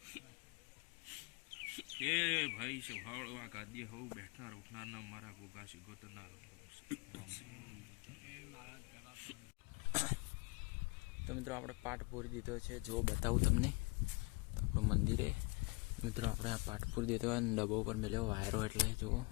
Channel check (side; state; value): right; quieter; 26.5 dB